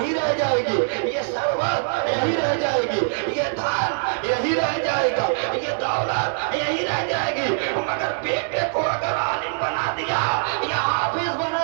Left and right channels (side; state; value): left; silent; 63 dB below the other